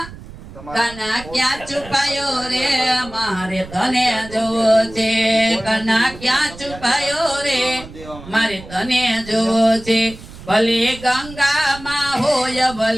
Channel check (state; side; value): noise; right; rumble, 16 dB below the sound